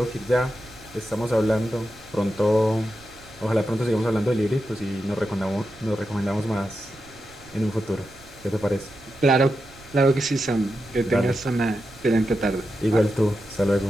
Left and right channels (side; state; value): right; noise; rumble, 23 dB below the sound